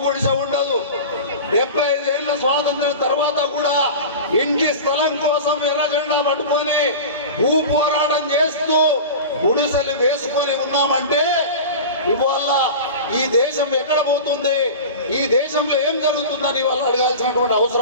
గుడిసె ఉండదు. 75 ఏళ్ల స్వాతంత్రం తర్వాత కూడా ఇంటి స్థలం కోసం ఎర్ర జెండా పట్టుకొని భూ పోరాటం చేస్తూ గుడిసెలు వేసుకొని ఉన్నామంటే ఇవాళ ఈ దేశం ఎక్కడ పోతుంది, ఈ దేశంలో ఏం జరుగుతుందని వాళ్ళు అడగాల్సినటువంటి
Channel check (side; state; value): both; inverted; correlation -0.31